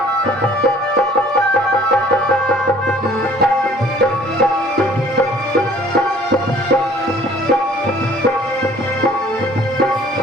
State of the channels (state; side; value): normal; both; correlation 0.54